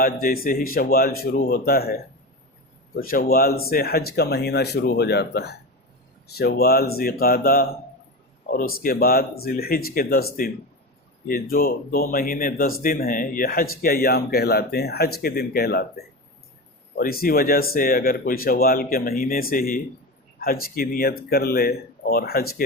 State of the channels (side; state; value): both; normal; correlation 0.23